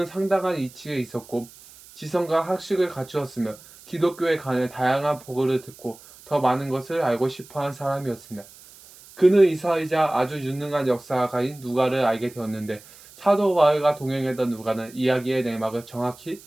상당한 이치에 있었고 지성과 학식을 갖추었으며 기독교에 관해 다양한 보고를 듣고 더 많은 것을 알고 싶어한 사람이었습니다. 그는 이사이자 아주 유능한 역사가인 누가를 알게 되었는데 사도 바울과 동행했던 누가는 이야기의 내막을 정확히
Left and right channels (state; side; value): noise; right; hiss, 22 dB below the sound